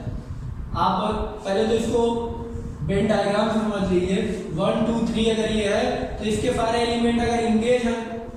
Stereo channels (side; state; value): both; identical; correlation 1.00